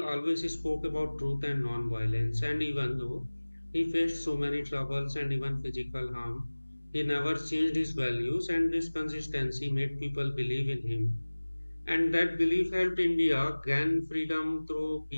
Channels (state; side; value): inverted; both; correlation -1.00